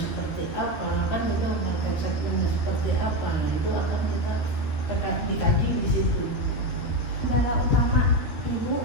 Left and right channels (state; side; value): late; right; 12 ms